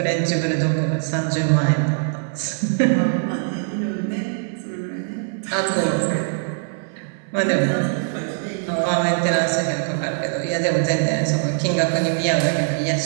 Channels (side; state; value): left; silent; digital silence